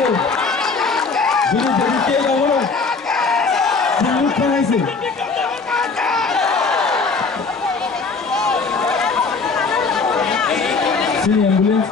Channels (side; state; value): right; quieter; 4.5 dB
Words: Ini jadi kaya orang. Silut thana itu. Sini ambulans